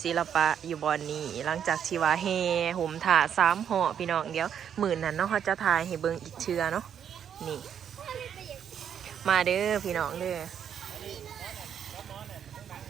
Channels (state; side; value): quieter; left; 8.6 dB